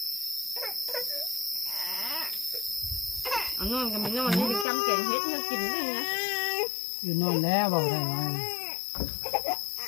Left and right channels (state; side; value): drops out; right; at 4.7 s